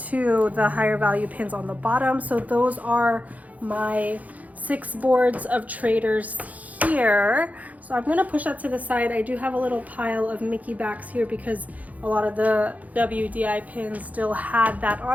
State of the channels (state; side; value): late; left; 0.075 ms